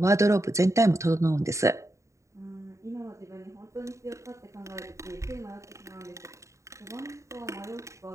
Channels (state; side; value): late; left; 0.14 ms